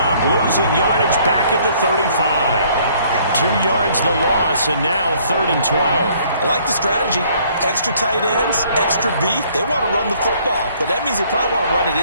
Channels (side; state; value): both; inverted; correlation -0.61